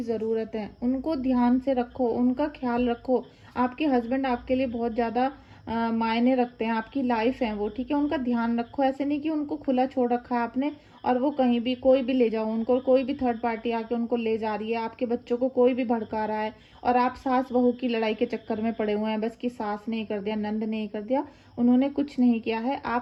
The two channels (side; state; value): both; identical; correlation 1.00